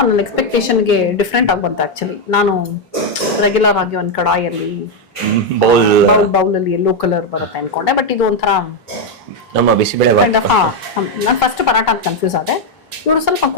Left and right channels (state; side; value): normal; both; correlation 0.03